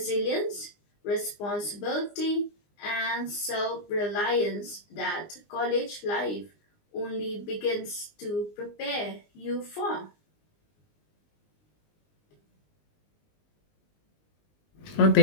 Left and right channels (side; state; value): right; late; 19 ms